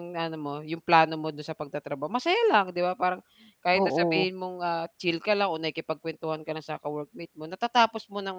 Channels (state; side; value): identical; both; correlation 1.00